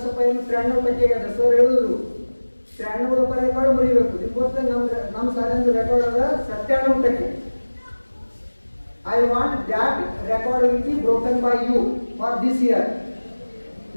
ಪೈನ 93% ಅದ ಸರ್ ಹೇಳಿದ್ರು 93 ರೆಕಾರ್ಡ್ ಮುರಿಬೇಕು। ಇವತ್ತು ನಮ್ಮ ಶಾಲೆಯ ರೆಕಾರ್ಡ್ ಅದ 97%। I want that record will be broken by you for this year.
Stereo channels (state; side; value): inverted; both; correlation -1.00